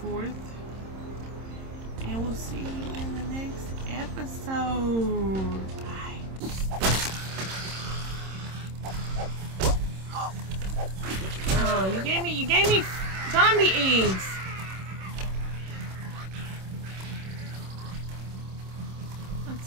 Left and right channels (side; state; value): left; late; 26 ms